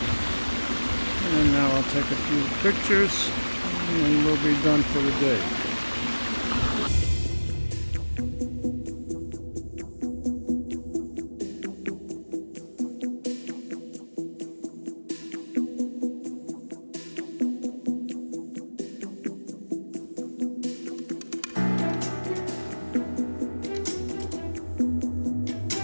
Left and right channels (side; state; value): both; inverted; correlation -1.00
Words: And now I'll take a few pictures and we'll be done for the day.